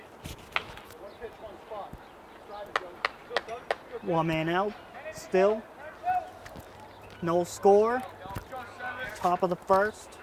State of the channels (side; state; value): both; identical; correlation 1.00